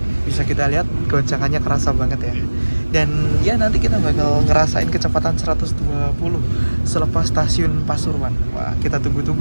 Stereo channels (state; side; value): inverted; both; correlation -1.00